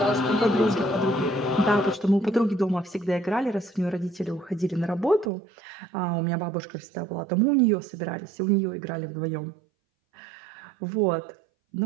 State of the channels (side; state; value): left; drops out; at 5.3 s